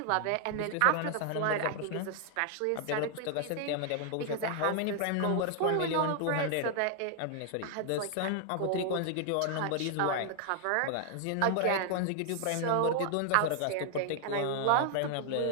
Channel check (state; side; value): different; both; correlation 0.00